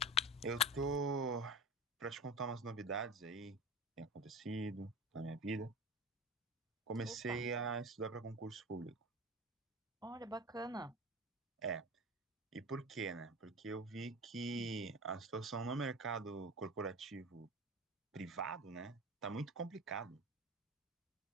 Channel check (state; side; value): normal; both; correlation 0.32